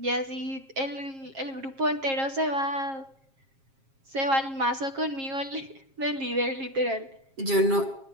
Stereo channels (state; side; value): late; left; 7.4 ms